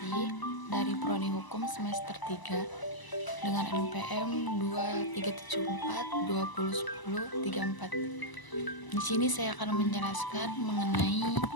dari Prodi Hukum semester 3 dengan NPM 2374 Di sini saya akan menjelaskan mengenai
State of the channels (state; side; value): late; right; 1.0 ms